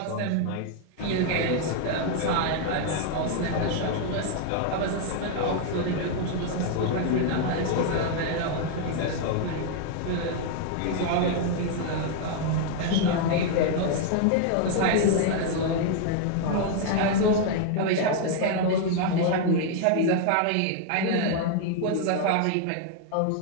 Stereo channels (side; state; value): both; different; correlation 0.00